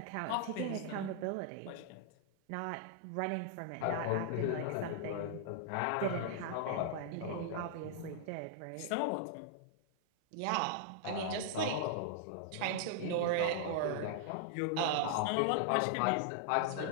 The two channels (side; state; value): both; different; correlation -0.01